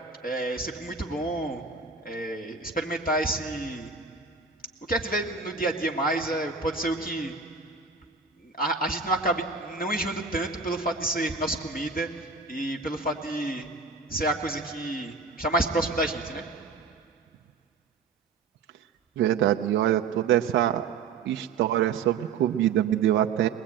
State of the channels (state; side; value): quieter; left; 4.9 dB